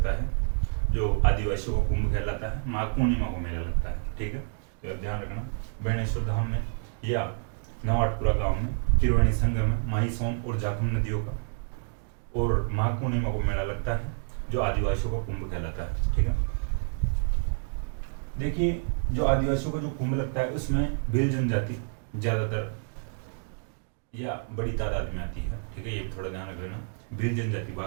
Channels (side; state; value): left; silent; digital silence